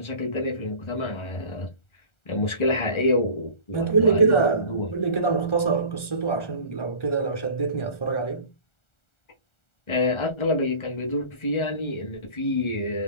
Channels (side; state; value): right; late; 1.4 ms